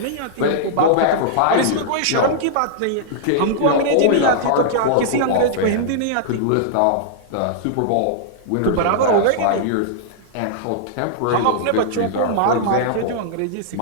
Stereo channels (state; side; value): different; both; correlation -0.02